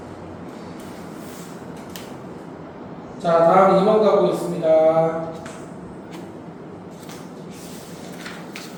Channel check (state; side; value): identical; both; correlation 1.00